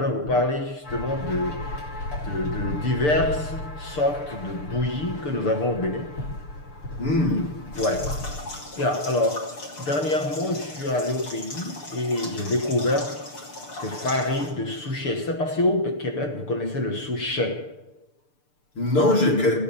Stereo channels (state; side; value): late; right; 6.8 ms